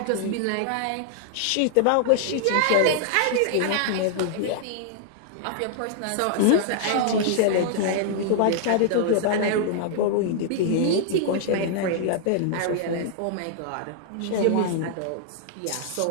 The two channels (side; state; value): both; different; correlation -0.01